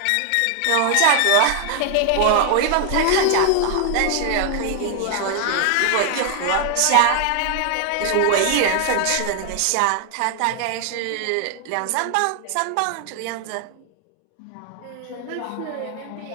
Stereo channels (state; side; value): different; both; correlation 0.00